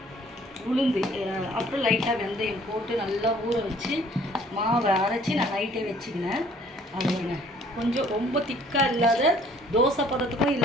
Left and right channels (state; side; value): normal; both; correlation 0.57